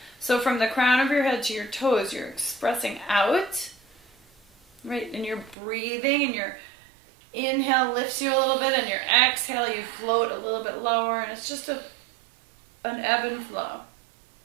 So from the crown of your head to your toes, you're expressing out. Right? And you're breathing, and your inhale lifts you a little bit, and your exhale, you float a little bit lower, and it's just an ebb and flow.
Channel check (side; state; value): left; drops out; at 5.6 s